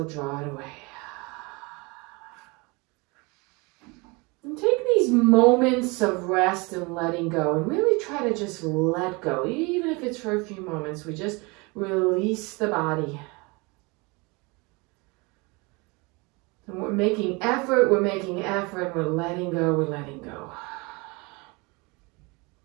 draw it away. And take these moments of rest and letting go and really try to just let go. Even if it's for a few moments, we just release the body. And we're making effort, we're letting go, we're letting go.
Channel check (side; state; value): left; quieter; 27.1 dB